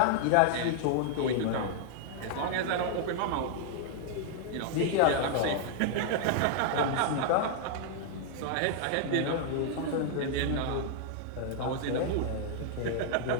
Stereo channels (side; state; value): both; different; correlation -0.01